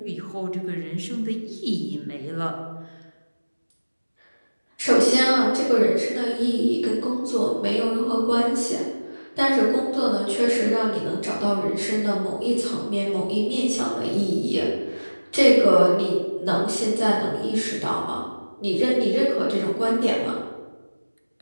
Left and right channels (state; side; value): inverted; both; correlation -1.00